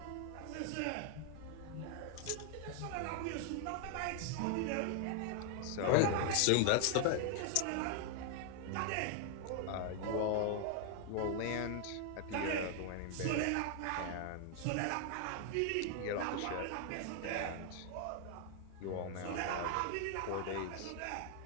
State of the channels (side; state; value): both; different; correlation 0.00